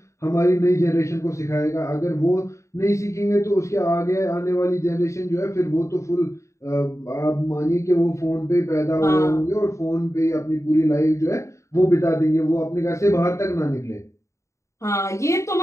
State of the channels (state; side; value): late; right; 0.14 ms